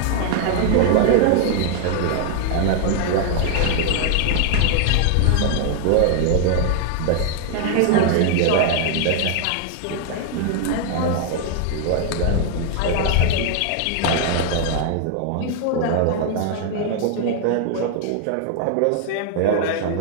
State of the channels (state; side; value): different; both; correlation 0.00